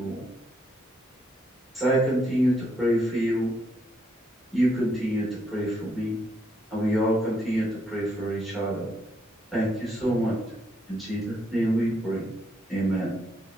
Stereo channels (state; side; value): normal; both; correlation 0.75